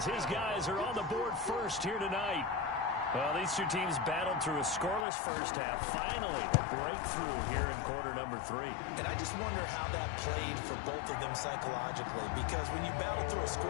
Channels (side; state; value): right; drops out; at 5.1 s